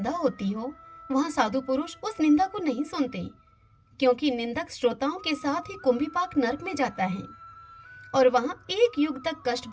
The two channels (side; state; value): both; identical; correlation 1.00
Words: होती हो वहाँ साधु पुरुष उस निंदा को नहीं सुनते, क्योंकि निंदक श्रोताओं के साथ ही कुंभीपाक नरक में जाता है और वहाँ एक युग तक कष्ट